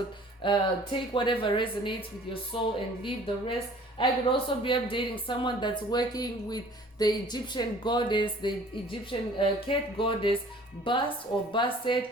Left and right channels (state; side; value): normal; both; correlation 0.51